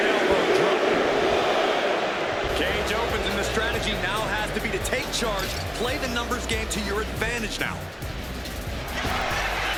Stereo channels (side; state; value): both; identical; correlation 1.00